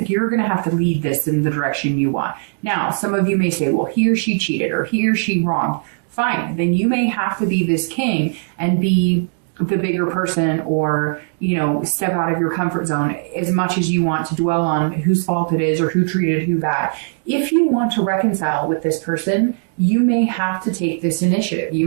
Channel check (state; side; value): silent; left; digital silence